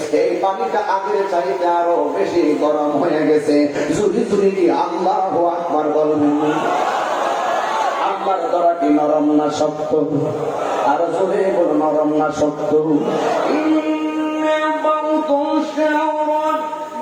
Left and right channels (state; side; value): identical; both; correlation 1.00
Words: এই পানিটা আগের চাইতে আরো বেশি গরম হয়ে গেছে। জুড়ি জুড়ি দিয়ে আল্লাহু আকবার বলবেন। আল্লাহর দরা কি নরম না শক্ত? আর জোরে বল, নরম না শক্ত?